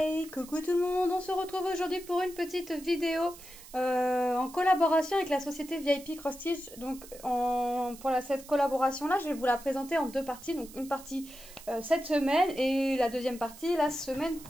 coucou tout le monde, on se retrouve aujourd'hui pour une petite vidéo en collaboration avec la société VIP Cross Stitch. Donc cette collaboration là, je vais vous la présenter en deux parties. Donc une partie cette semaine et la deuxième partie la semaine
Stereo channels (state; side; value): noise; right; hiss, 18 dB below the sound